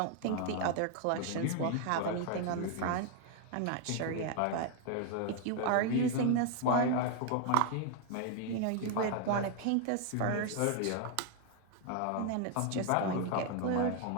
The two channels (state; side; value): different; both; correlation 0.00